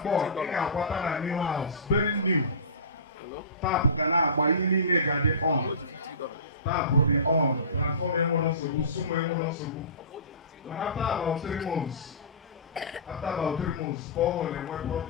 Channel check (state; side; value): inverted; both; correlation -0.31